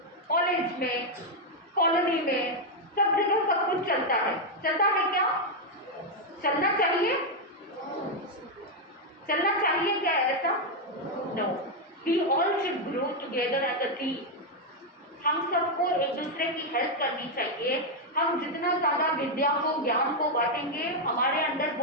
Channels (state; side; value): normal; both; correlation 0.01